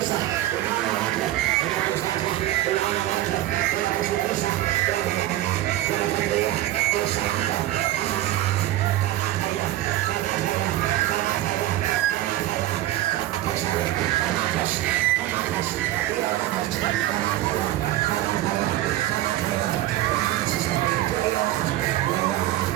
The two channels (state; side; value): quieter; left; 14.8 dB